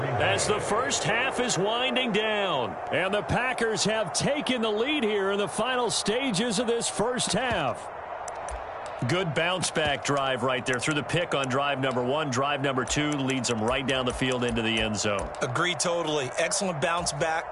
as the first half is winding down. And the Packers have taken the lead here in the final stages of this first half. Good bounce-back drive right there through the pick on drive number 1. Drive number 2 leads them right down the field into the end zone. Agree totally. Excellent bounce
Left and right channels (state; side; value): identical; both; correlation 1.00